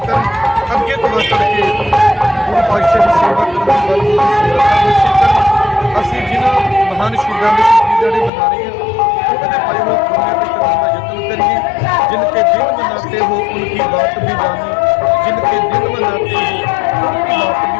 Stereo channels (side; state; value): right; drops out; at 8.3 s